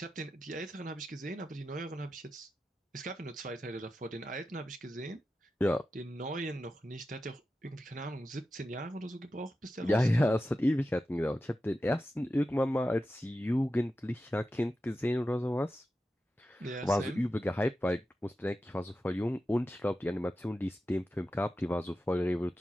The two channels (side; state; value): both; normal; correlation 0.92